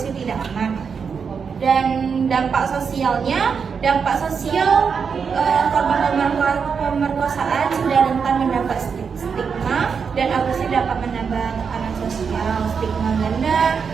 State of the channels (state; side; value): quieter; left; 6.1 dB